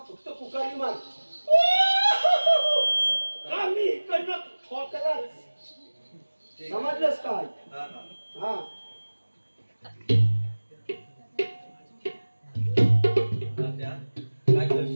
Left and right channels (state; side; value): inverted; both; correlation -1.00